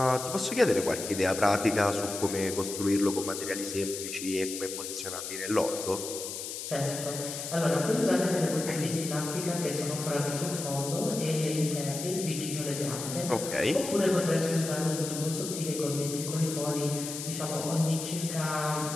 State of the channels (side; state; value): left; noise; hiss, 7 dB below the sound